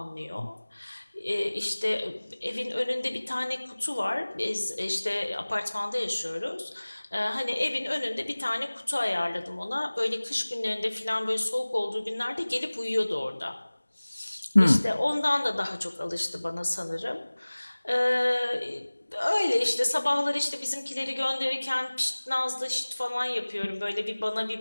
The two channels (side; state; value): both; inverted; correlation -1.00